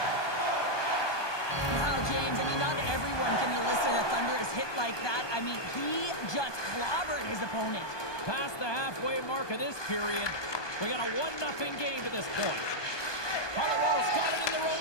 Wow, James, I mean, not everyone can elicit a thunderous hit like that. I mean, he just clobbered his opponent. Past the halfway mark of this period, we got a 1-0 game to this point. Colorado's got it in their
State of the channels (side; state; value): right; late; 1.2 ms